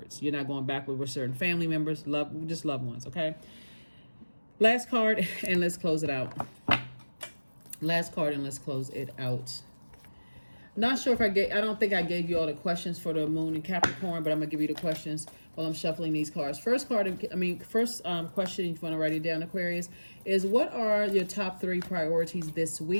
You're not going backward with certain family members, just loved ones. Okay. Last card, and let's close it out. Last card, and let's close it out. Not sure if I don't think I gave you all the questions for the moon and Capricorn, but I'm gonna give you the questions while I'm shuffling these cards. First question, if you want to write it down, Aquarius, is what are your top 3 priorities this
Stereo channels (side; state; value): both; inverted; correlation -1.00